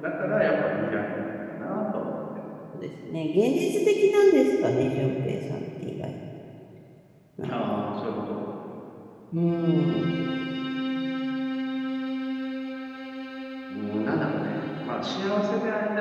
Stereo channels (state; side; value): identical; both; correlation 1.00